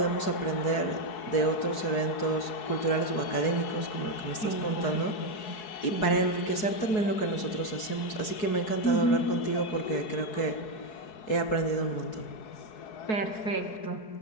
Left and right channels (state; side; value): late; right; 4.7 ms